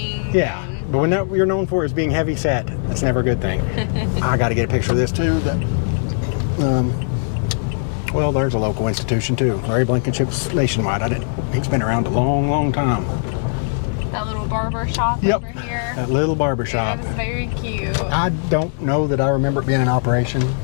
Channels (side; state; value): right; silent; digital silence